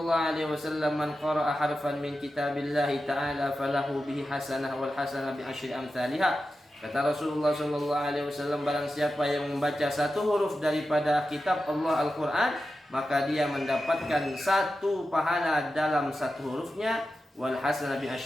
alaihi wasallam, man qara'a harfan min kitabillahi ta'ala falahu bihi hasanah wal hasanah bi asyri amsalihha. Kata Rasulullah sallallahu alaihi wasallam, barang siapa yang membaca satu huruf daripada kitab Allah Al-Quran, maka dia mendapatkan satu pahala dalam satu hurufnya, wal hasanah bi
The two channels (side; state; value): both; normal; correlation 0.91